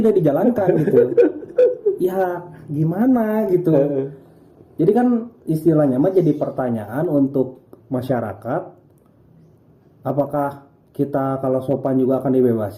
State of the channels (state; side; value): identical; both; correlation 1.00